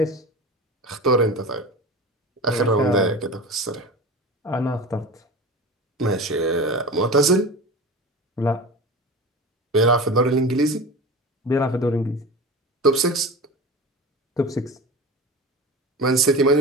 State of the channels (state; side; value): normal; both; correlation 0.32